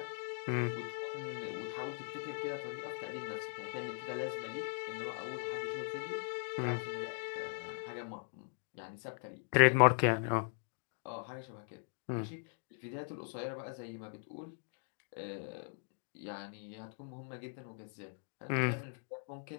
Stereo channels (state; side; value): silent; right; 51 dB below the other